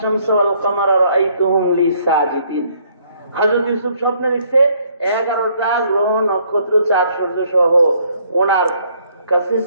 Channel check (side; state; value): both; inverted; correlation -0.66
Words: ওয়াল কমারা রাআইতুহুম লি সাজিদিন। হযরত ইউসুফ স্বপ্নে দেখছে 11টা গ্রহ নক্ষত্র চাঁদ সূর্য সহ ওনার কাছে